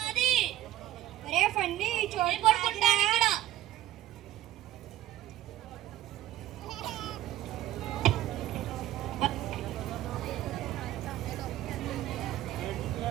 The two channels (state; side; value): quieter; left; 13.6 dB